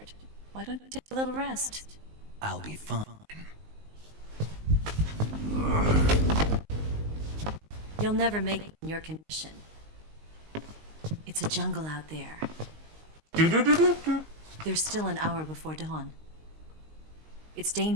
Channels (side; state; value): left; late; 19 ms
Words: Why don't you take a little rest? I'll be fine. You'll never make it in your condition. It's a jungle out there. There's still an hour before dawn. It's